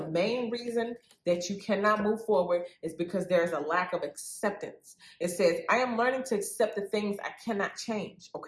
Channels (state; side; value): identical; both; correlation 1.00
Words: main reason that you cannot move forward is because there is a lack of acceptance. It says, I am learning to accept the things I cannot change,